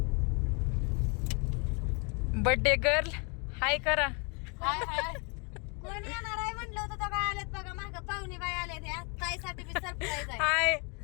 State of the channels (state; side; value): quieter; right; 33.5 dB